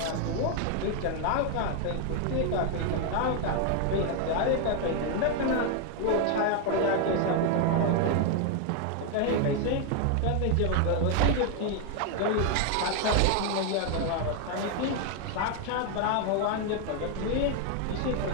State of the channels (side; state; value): both; different; correlation 0.01